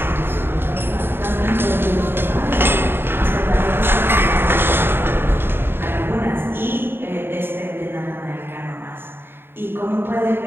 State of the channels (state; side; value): late; left; 0.11 ms